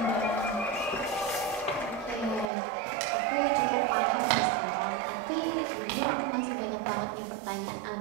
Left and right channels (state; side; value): drops out; left; at 2.5 s